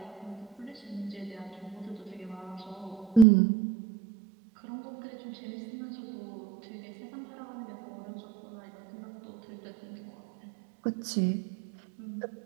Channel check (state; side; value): drops out; left; at 3.2 s